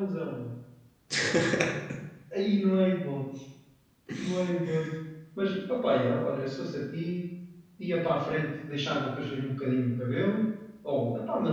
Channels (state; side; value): identical; both; correlation 1.00